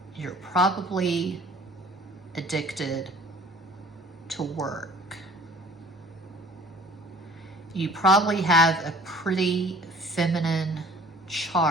you're probably addicted to work. You probably have a pretty feminine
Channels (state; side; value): normal; both; correlation 0.51